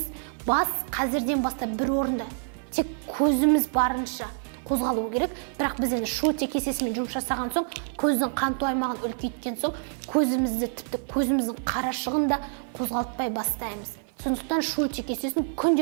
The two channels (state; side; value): silent; left; 56 dB below the other